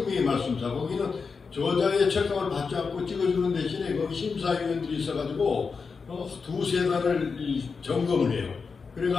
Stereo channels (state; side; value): quieter; right; 5.1 dB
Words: 말씀사. 거기는 저자의 책감을 받지 않고 찍어주는 대신에 거기 심사위원들이 있어가지고 두세 달을 점검을 해요.